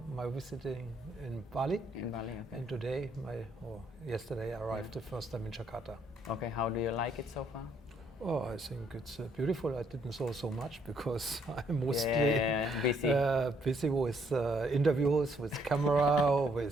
my visiting in Bali, In Bali, okay. and today, yesterday I arrived the first time in Jakarta. Okay, how do you like it so far? Oh, I think it's beautiful. I didn't saw so much because I'm mostly busy. busy with interviews, with camera,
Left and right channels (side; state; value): both; normal; correlation 0.69